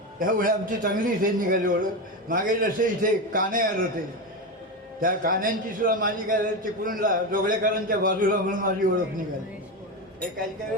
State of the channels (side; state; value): both; normal; correlation 0.16